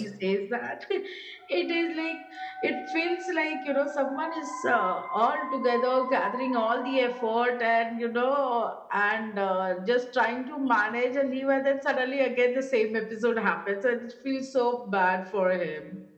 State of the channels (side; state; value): both; identical; correlation 1.00